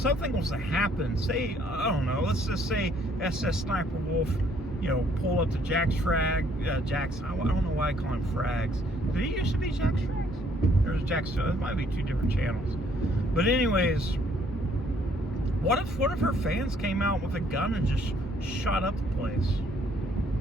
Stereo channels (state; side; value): normal; both; correlation 0.65